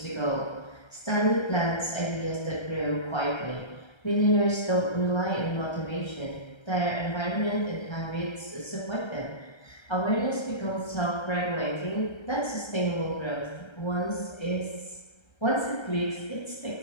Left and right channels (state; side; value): late; right; 1.3 ms